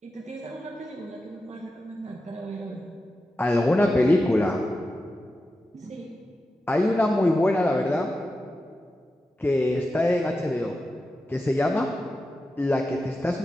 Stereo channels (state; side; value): normal; both; correlation 0.91